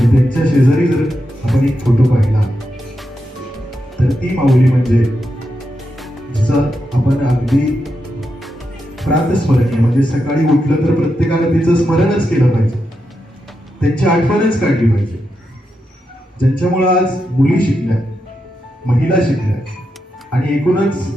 त्यांच्या शेजारी जर आपण एक फोटो पाहिला तर ती माऊली म्हणजे जिचा आपण अगदी प्रातस्मरणीय, म्हणजे सकाळी उठलं तर प्रत्येकाला तिचं स्मरणच केलं पाहिजे, त्यांची आठवणच काढली पाहिजे, ज्यांच्यामुळे आज मुली शिकल्या, महिला शिकल्या आणि एकूणच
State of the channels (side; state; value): both; normal; correlation 0.86